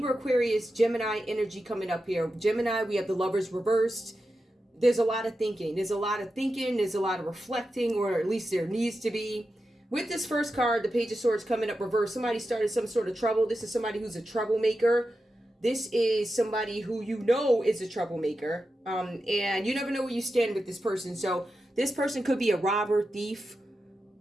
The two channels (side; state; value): both; normal; correlation 0.90